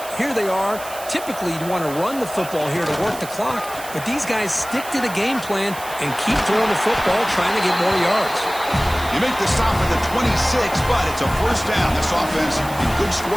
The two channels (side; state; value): right; noise; hiss, 14 dB below the sound